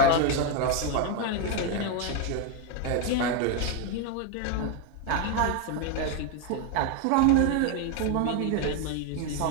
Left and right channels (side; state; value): both; different; correlation 0.01